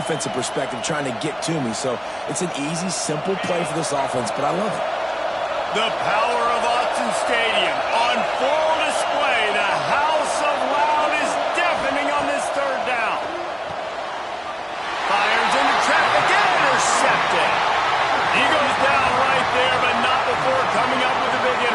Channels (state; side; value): identical; both; correlation 1.00